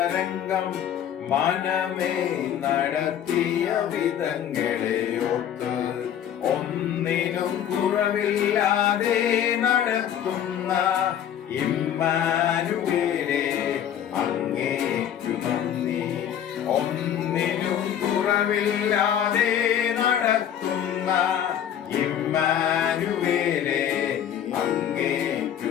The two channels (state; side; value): quieter; right; 9.8 dB